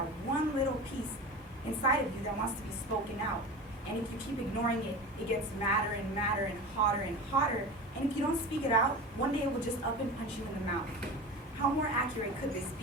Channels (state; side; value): normal; both; correlation 0.31